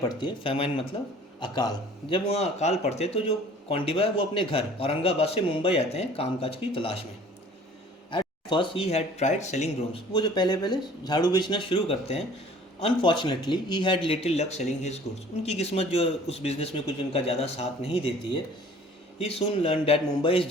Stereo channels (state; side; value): normal; both; correlation 0.51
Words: है, फेमाइन मतलब अकाल, जब वहाँ अकाल पड़ते हैं तो जो कौंडिबा है वो अपने घर औरंगाबाद से मुंबई आते हैं कामकाज की तलाश में। At first he had tried selling brooms. वो जो पहले पहले झाड़ू बेचना शुरू करते हैं। Unfortunately he had little luck selling his goods. उनकी किस्मत जो उस बिज़नेस में कुछ उनका ज़्यादा साथ नहीं देती है। He soon learn that Mumbai is